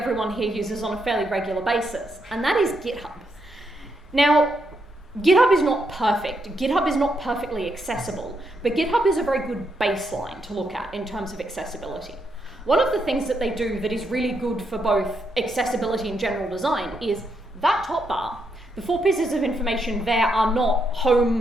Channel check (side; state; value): both; normal; correlation 0.80